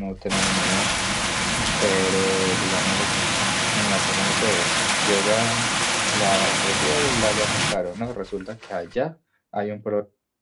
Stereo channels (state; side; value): identical; both; correlation 1.00